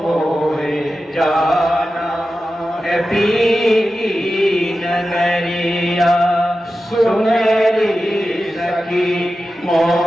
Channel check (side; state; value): both; normal; correlation 0.93